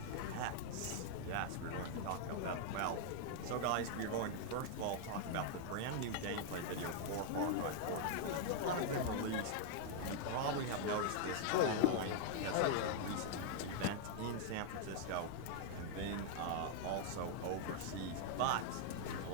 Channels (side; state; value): both; different; correlation 0.00